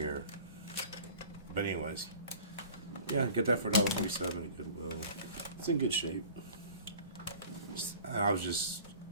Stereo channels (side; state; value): both; inverted; correlation -0.44